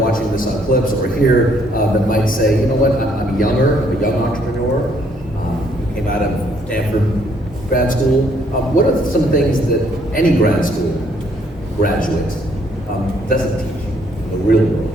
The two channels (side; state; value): both; normal; correlation 0.67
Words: this on clips or here that might say, you know what, I'm younger, I'm a young entrepreneur, came out of Stanford grad school. What are some things that any grad school graduate doesn't teach in the real world?